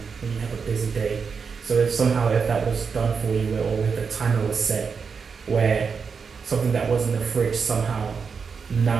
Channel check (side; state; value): left; quieter; 5.7 dB